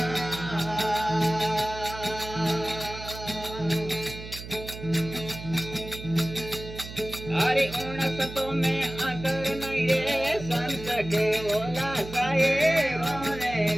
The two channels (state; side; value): noise; right; hum, 12 dB below the sound